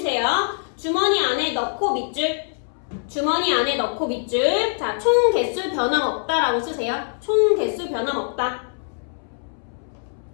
주머니 안에 넣고 밑줄. 주머니 안에 넣고 밑줄. 자, 총 개수 변함 없다라고 쓰세요. 총 개수 변함 없다.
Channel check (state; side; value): silent; right; 63 dB below the other